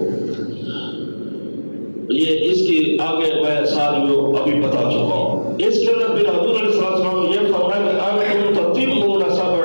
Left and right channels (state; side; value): inverted; both; correlation -1.00